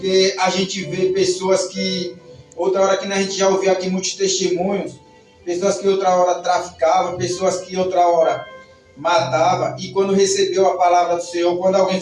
a gente vê pessoas que, outra hora que a gente já ouviu aqui muitos testemunhos, pessoas que outra hora traficavam, pessoas que outra hora matavam, e quando recebeu a palavra do Senhor, quando alguém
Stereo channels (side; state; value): both; identical; correlation 1.00